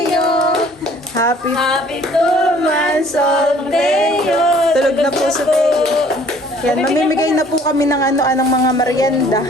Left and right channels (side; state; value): both; normal; correlation 0.55